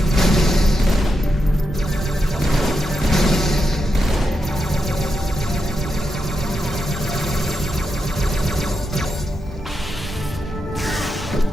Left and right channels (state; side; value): normal; both; correlation 0.86